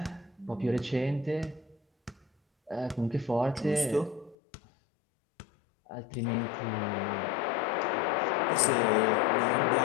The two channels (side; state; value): right; drops out; at 4.4 s